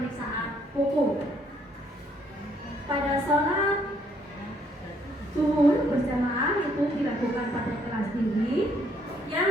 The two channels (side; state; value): both; normal; correlation 0.68